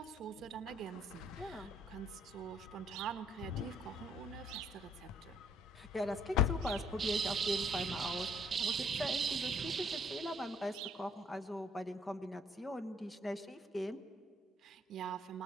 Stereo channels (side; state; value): both; normal; correlation 0.64